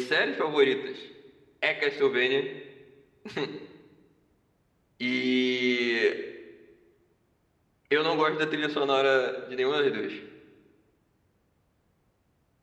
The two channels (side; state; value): both; identical; correlation 1.00